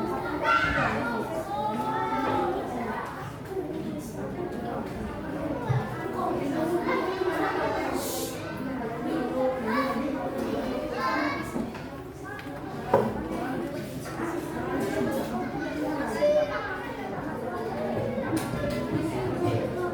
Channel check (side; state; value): both; identical; correlation 1.00